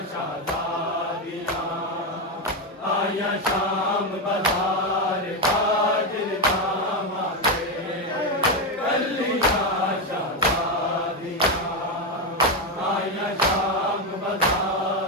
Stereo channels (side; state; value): both; normal; correlation 0.09